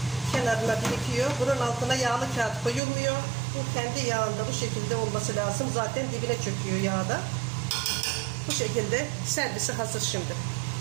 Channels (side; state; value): left; drops out; at 2.8 s